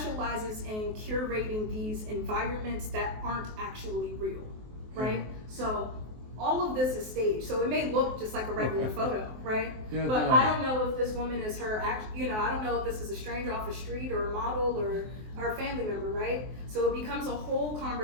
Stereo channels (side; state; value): left; late; 23 ms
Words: in curating these environments that aren't actually real, right? So all of this is staged, so it may look just like a regular photo, right? Yeah, but I don't know if this woman is her I don't know if this is a stranger off the street or a model or a family member, right? So it becomes a whole